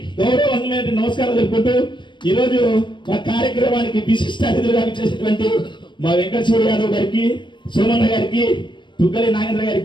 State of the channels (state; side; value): late; right; 0.22 ms